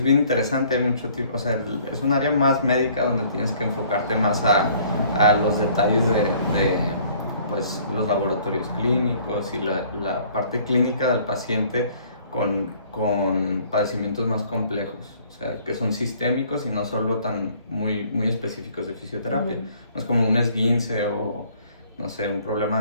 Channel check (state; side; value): inverted; both; correlation -0.57